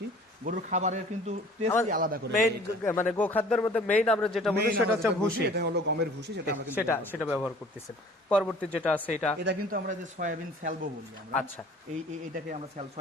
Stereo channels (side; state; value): both; normal; correlation 0.49